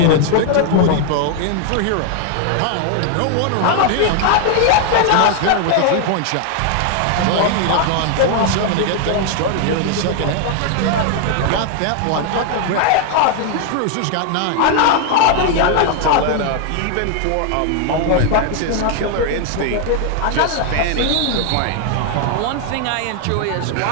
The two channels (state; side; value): different; both; correlation 0.00